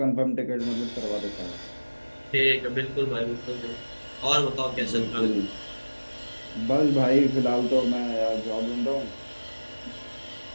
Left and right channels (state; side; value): inverted; both; correlation -1.00